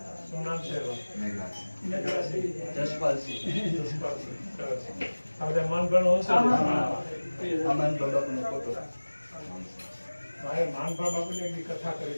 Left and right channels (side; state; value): both; inverted; correlation -1.00